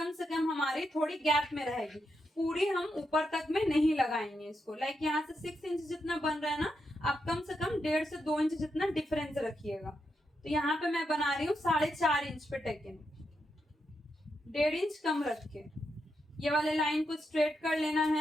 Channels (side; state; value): both; normal; correlation 0.84